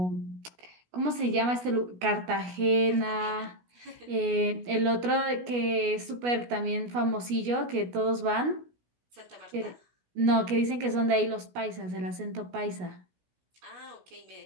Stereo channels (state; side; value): late; left; 16 ms